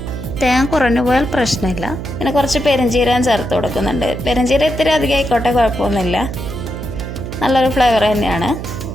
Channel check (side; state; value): right; noise; hum, 7 dB below the sound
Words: തേങ്ങ കുറഞ്ഞു പോയാൽ പ്രശ്നമില്ല. പിന്നെ കുറച്ച് പെരുംജീരകം ചേർത്ത് കൊടുക്കുന്നുണ്ട്. പെരുംജീരകം ഇത്തിരി അധികം ആയിക്കോട്ടെ, കുഴപ്പമൊന്നുമില്ല, നല്ലൊരു ഫ്ലേവർ തന്നെയാണ്.